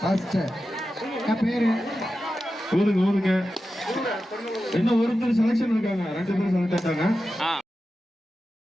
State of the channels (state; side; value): normal; both; correlation 0.92